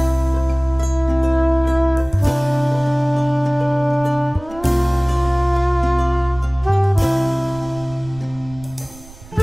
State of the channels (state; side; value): noise; right; rumble, 20 dB below the sound